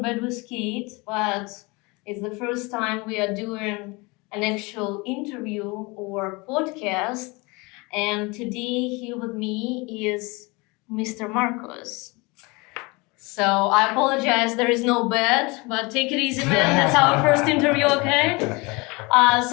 bed with Kate, but it's the first time we are doing an actual interview or podcast. And today, here with me is Mr. Marcos. So I apologize, there is no bed, but take it easy, man. That's our first interview, okay?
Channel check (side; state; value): right; quieter; 26.2 dB